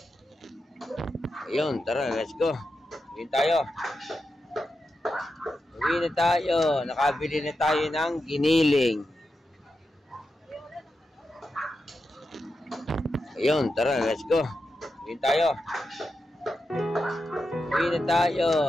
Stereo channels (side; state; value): both; normal; correlation 0.89